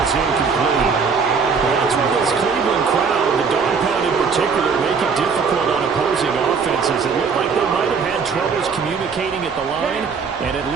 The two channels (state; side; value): quieter; left; 5.6 dB